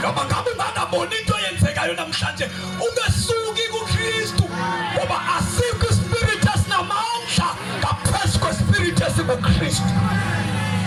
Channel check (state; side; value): identical; both; correlation 1.00